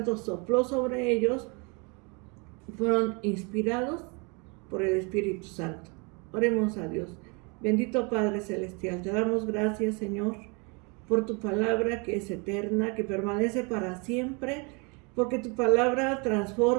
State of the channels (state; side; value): quieter; left; 31.5 dB